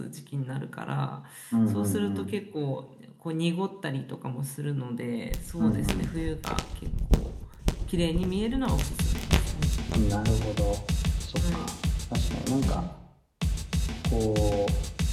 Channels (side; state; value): both; identical; correlation 1.00